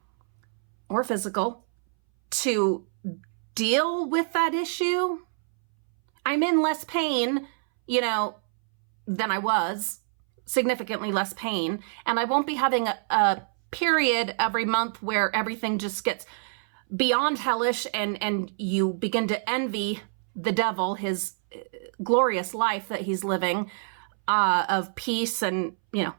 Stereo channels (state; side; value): silent; left; 61 dB below the other